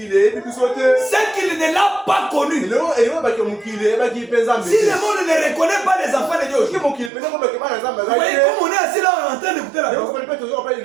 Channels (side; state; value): left; drops out; at 7.1 s